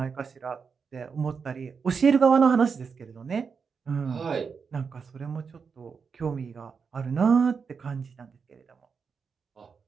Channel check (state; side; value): quieter; left; 5.7 dB